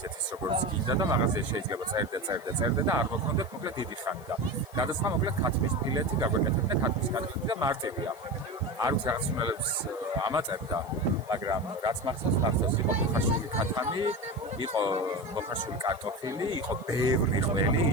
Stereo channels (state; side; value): noise; left; hiss, 25 dB below the sound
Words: როგორც გინდა და მაღაზიაში შეიძლება წერდე და არ მოქონდეთ მოკლედ დიდი ხანი და გადასხმა მოკლედ ქათმის ფილეთი გაგვეკეთებდა ქათმის კატლეტი და მარტივია არ ვიცი რაღაც უმელებს ამაწერდა მაგრამ რაც მახსოვს იყო მოხარშული ქათამი იყო მოხარშული კარტოფილი იყო ბევრი ყველი